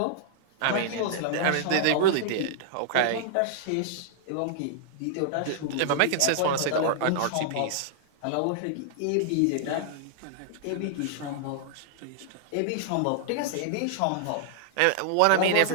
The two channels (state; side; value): different; both; correlation -0.01